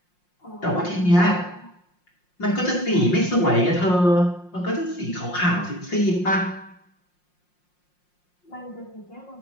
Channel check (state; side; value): late; right; 5.6 ms